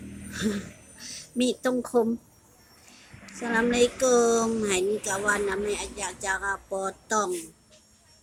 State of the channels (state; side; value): identical; both; correlation 1.00